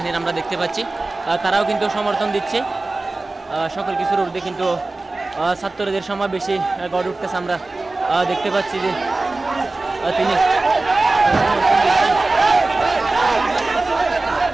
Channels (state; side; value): quieter; left; 3.2 dB